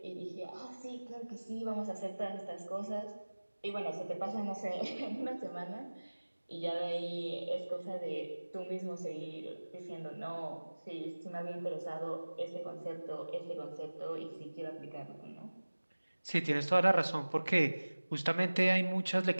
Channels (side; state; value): both; inverted; correlation -1.00